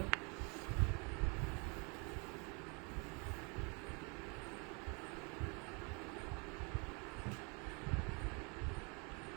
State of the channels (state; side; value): quieter; left; 32.4 dB